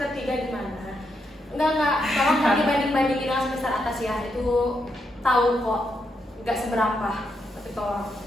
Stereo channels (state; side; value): normal; both; correlation 0.81